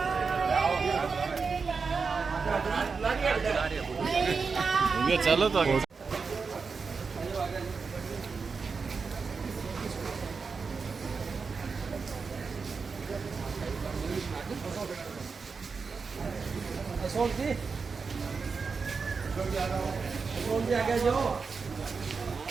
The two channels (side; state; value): left; quieter; 5.0 dB